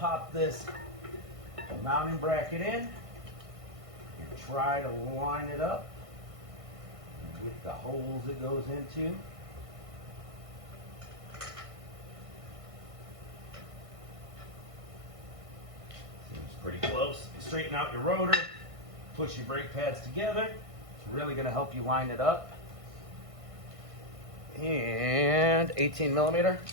this mounting bracket in and try to line it up with the holes it goes into. Seems pretty close. Straighten out your rotor, push your brake pads together. It's really gonna help you line it up. And 18 millimeter.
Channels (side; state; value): left; late; 1.6 ms